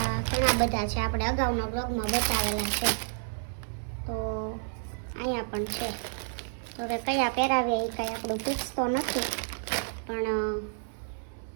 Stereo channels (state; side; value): silent; left; 58 dB below the other